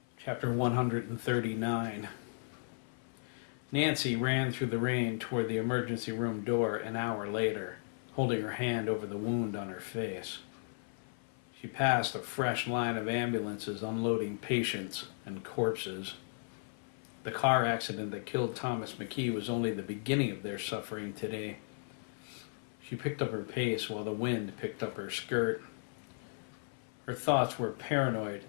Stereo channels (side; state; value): right; silent; 54 dB below the other